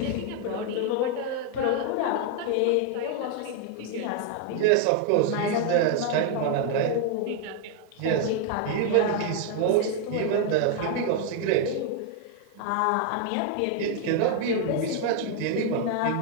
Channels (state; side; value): different; both; correlation 0.00